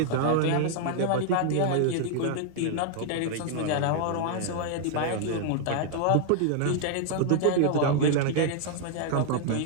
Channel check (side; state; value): both; different; correlation 0.00